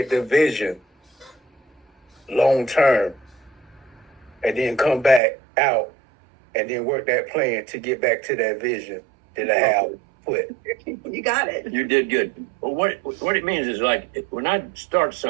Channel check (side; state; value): left; drops out; at 5.2 s